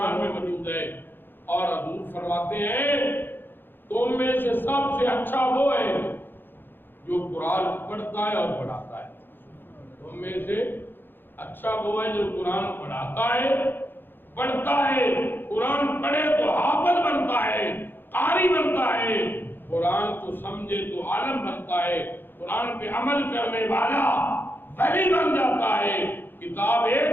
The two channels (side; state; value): right; late; 0.098 ms